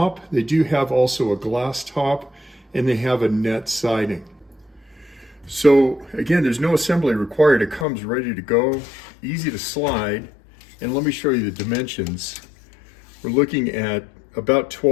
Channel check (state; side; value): drops out; right; at 7.9 s